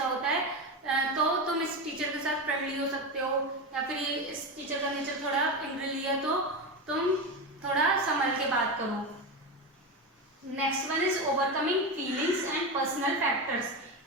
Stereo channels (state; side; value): normal; both; correlation 0.17